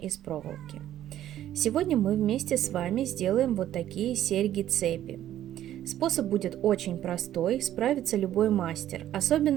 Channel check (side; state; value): left; quieter; 12.2 dB